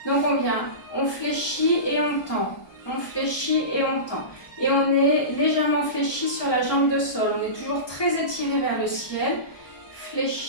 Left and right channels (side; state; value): right; late; 1.2 ms